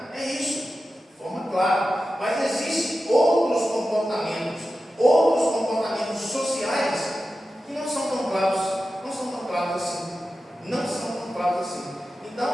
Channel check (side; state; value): both; normal; correlation 0.92